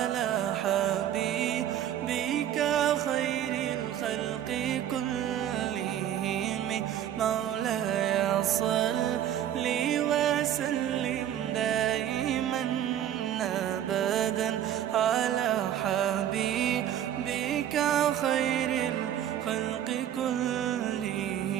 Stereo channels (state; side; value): quieter; left; 10.8 dB